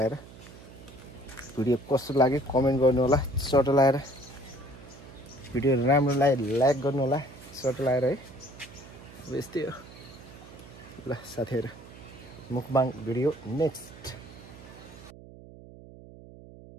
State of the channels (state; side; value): noise; right; hum, 18 dB below the sound